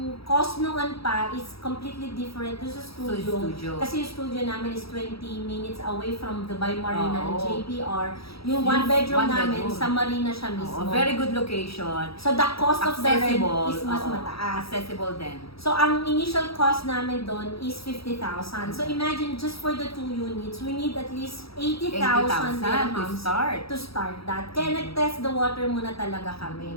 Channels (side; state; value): right; late; 0.76 ms